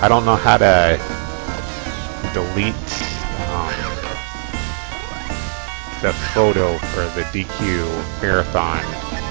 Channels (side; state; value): left; silent; 59 dB below the other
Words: I don't know how to delete the photo for the DQ Marathon